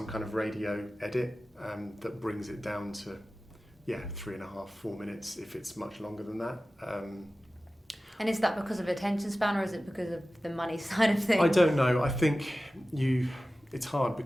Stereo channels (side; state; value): both; normal; correlation 0.96